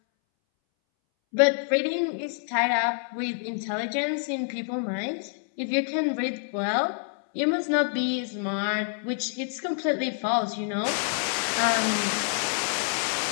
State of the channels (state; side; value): silent; right; 60 dB below the other